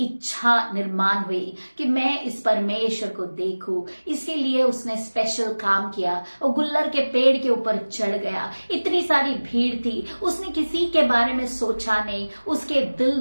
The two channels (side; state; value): both; inverted; correlation -1.00